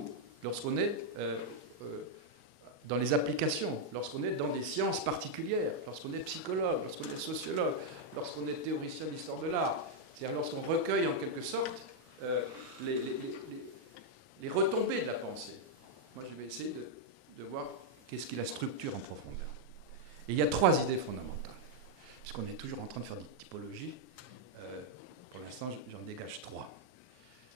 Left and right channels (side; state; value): left; late; 2.0 ms